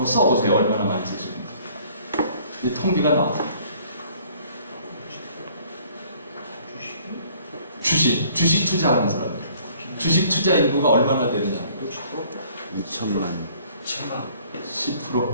써보세요. 얼마나 많이 쓰시는지. 이 통계가 나왔어요. 주식 투자하는 사람들. 주식 투자 인구가 얼마나 되느냐. 2천만. 10%.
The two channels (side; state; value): both; inverted; correlation -0.57